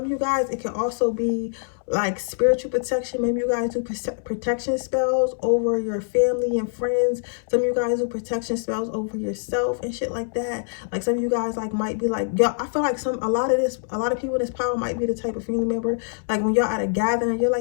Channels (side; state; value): right; silent; 63 dB below the other